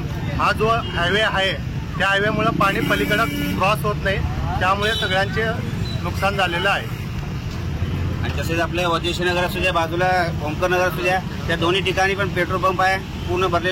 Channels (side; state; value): both; identical; correlation 1.00